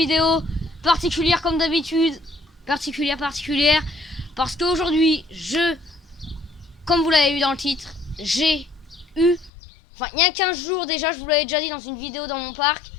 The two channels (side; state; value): right; drops out; at 9.5 s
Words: particulière comme d'habitude. Particulière, parce qu'aujourd'hui, comme vous l'avez vu dans le titre, j'ai eu, enfin il y a 15 jours déjà, je vous l'avais déjà dit dans une vidéo dans mon parc,